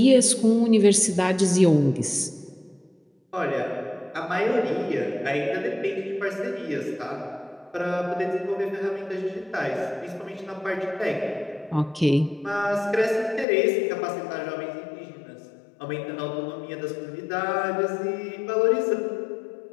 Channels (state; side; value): drops out; right; at 13.5 s